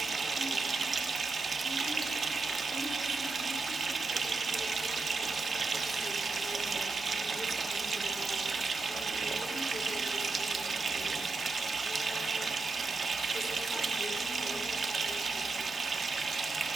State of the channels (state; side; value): quieter; left; 3.8 dB